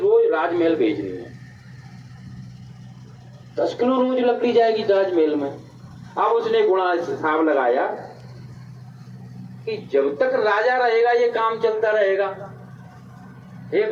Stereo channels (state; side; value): identical; both; correlation 1.00